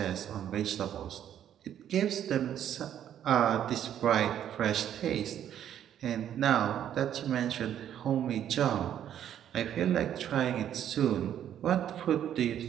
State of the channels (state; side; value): quieter; left; 10.3 dB